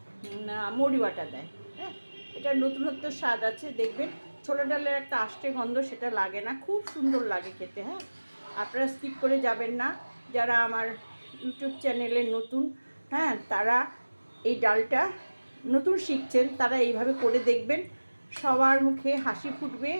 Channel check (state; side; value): inverted; both; correlation -1.00